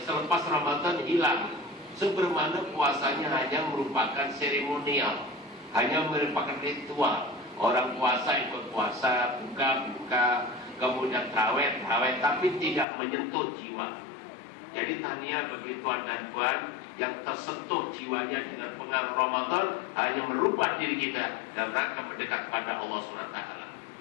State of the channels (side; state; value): right; drops out; at 12.9 s